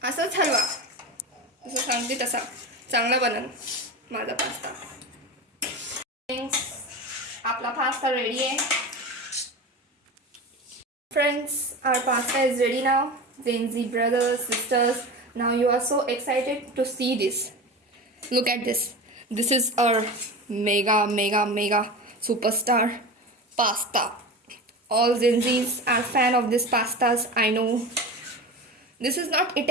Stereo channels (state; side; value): normal; both; correlation 0.28